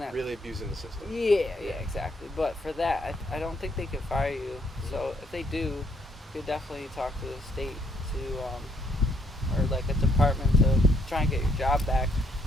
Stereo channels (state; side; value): normal; both; correlation 0.69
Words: really abusing the system. Yeah, exactly. But for that, I don't think they could fire you. So if they do, you could definitely talk to the state or a department to try and get your job back.